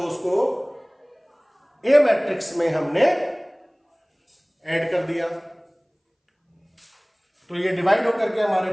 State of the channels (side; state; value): both; identical; correlation 1.00